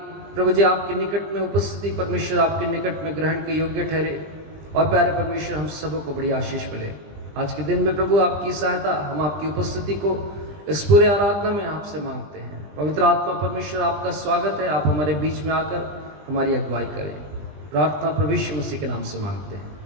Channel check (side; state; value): left; late; 20 ms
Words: प्रभु जी आपके निकट में उपस्थिति परमेश्वर आपके निकट में ग्रहण के योग्य ठहरे। और प्यारे परमेश्वर, हम सबों को बड़ी आशीष मिले आज के दिन में। प्रभु आपकी सहायता, हम आपकी उपस्थिति को इस पूरे आराधना में आपसे मांगते हैं। पवित्र आत्मा परमेश्वर, आपका स्वागत है। आप हमारे बीच में आकर हमारी अगुवाई करें। प्रार्थना प्रभु यीशु मसीह के नाम से मांगते हैं,